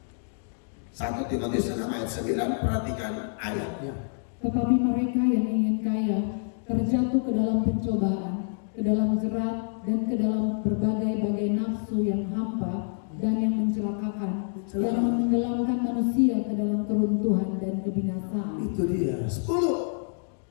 1 Timotius 6 ayat 9, perhatikan ayatnya. Tetapi mereka yang ingin kaya terjatuh ke dalam pencobaan, ke dalam jerat, dan ke dalam berbagai-bagai nafsu yang hampa dan yang mencelakakan, yang menenggelamkan manusia ke dalam keruntuhan dan kebinasaan. Itu dia. 10.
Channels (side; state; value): right; silent; digital silence